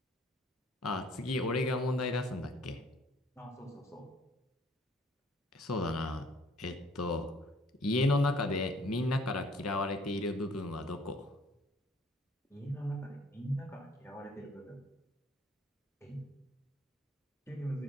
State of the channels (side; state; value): both; normal; correlation 0.58